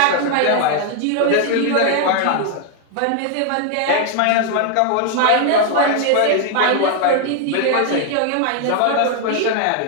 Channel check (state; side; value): different; both; correlation 0.00